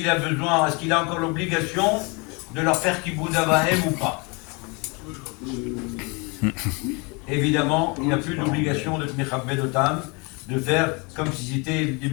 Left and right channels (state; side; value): quieter; right; 30.1 dB